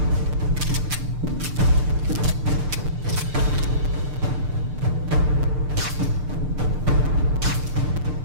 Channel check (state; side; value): late; left; 6.7 ms